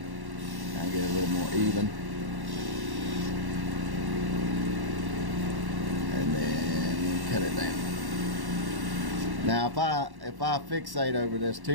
Kind of get it a little more even. And then cut it down. Now if I fixate over this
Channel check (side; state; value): left; late; 1.1 ms